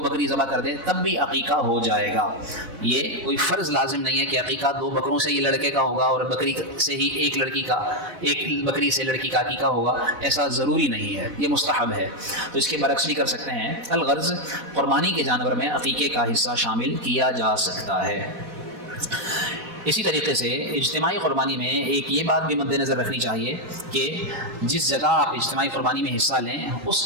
بکری ذبح کر دے، تب بھی عقیقہ ہو جائے گا۔ یہ کوئی فرض لازم نہیں ہے کہ عقیقہ 2 بکروں سے ہی لڑکے کا ہوگا اور بکری سے ہی 1 لڑکی کا، 1 بکری سے لڑکی کا عقیقہ ہوگا، ایسا ضروری نہیں ہے، یہ مستحب ہے۔ تو اس کے برعکس بھی کر سکتے ہیں۔ الغرض قربانی کے جانور میں عقیقے کا حصہ شامل کیا جا سکتا ہے۔ اسی طریقے سے اجتماعی قربانی میں ایک یہ بات بھی مد نظر رکھنی چاہیے کہ جس جگہ آپ اجتماعی قربانی میں حصہ لیں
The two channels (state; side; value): late; left; 4.0 ms